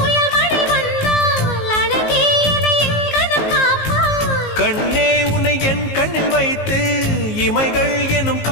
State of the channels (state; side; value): late; right; 19 ms